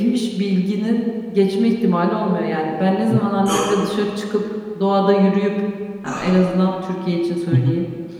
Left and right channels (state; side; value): identical; both; correlation 1.00